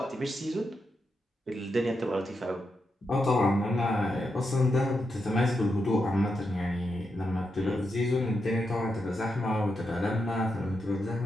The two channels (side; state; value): both; normal; correlation 0.85